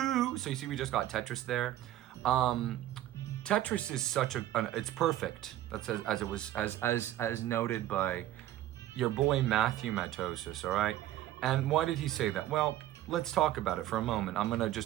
So you see, we just got Tetris there. Tetris is such it's perfect. That's as noted by your boy Matthew Matosis. All right. And why did he say that? Well, let's talk about it for a moment. I'm gonna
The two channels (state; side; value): quieter; left; 13.7 dB